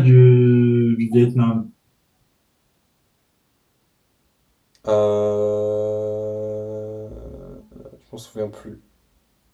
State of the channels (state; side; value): identical; both; correlation 1.00